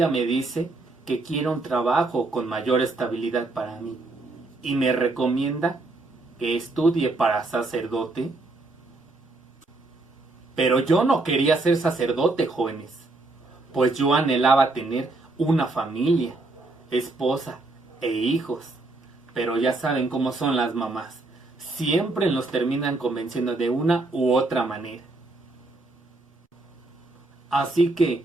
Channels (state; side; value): quieter; left; 3.1 dB